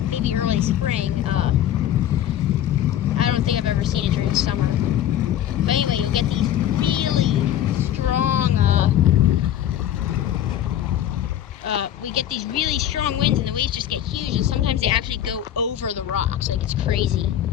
maybe early spring. I don't think I've ever seen it during the summer. But anyway, you'll get these really strong, we get these really strong winds and the waves just get huge, and sometimes they actually go over the rocks. Like, it's crazy.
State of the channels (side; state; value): right; quieter; 11.2 dB